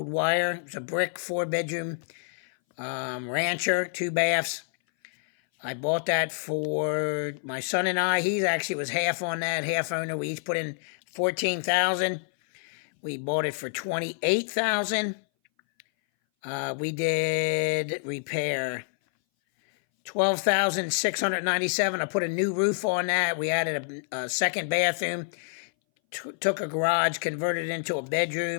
Wire. It's a brick 4-bedroom rancher, 2 baths. I bought that for my son and I. He actually was half on that, half owner. We each put in 14,000. We bought it for 28,000. We did repair 12,697. I put a new roof on that. We added a second bathroom. Took a garage, converted it into a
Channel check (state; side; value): silent; right; 59 dB below the other